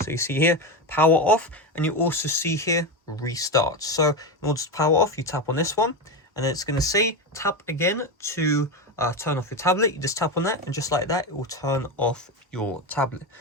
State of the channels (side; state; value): both; normal; correlation 0.16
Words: you see here power off, and you also see here restart. So in order to power off, you tap on this one, and then it's going to say tap again to turn off your tablet. You just tap on that, and just like that, it will turn off your tablet.